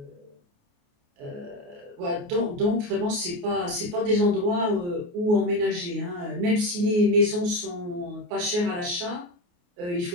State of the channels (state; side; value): late; left; 28 ms